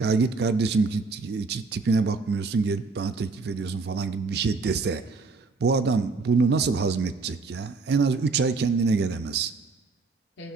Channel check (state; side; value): quieter; left; 4.1 dB